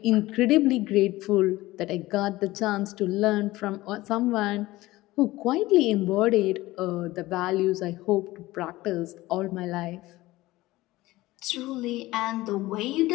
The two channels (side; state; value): right; quieter; 18.3 dB